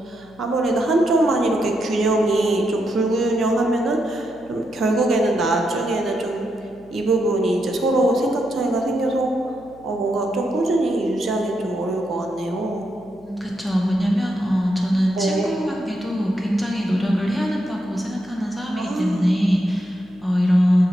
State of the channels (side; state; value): left; noise; hum, 25 dB below the sound